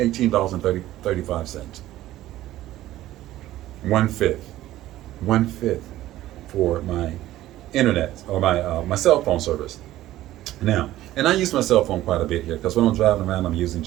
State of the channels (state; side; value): quieter; left; 14.7 dB